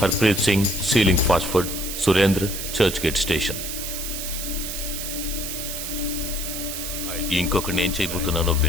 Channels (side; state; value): right; noise; hiss, 5 dB below the sound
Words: Harpreet Singh ceiling fast food, Surendra Churchgate station. ఇంకొకటి నేను చేయబోతున్నానో